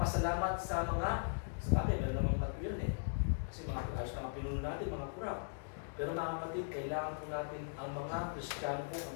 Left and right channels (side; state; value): right; silent; digital silence